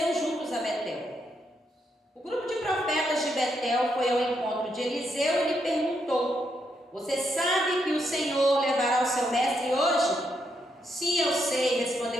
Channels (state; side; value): normal; both; correlation 0.79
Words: juntos a Betel. O grupo de profetas de Betel foi ao encontro de Eliseu e lhe perguntou: Você sabe que o Senhor levará o seu mestre hoje? Sim, eu sei,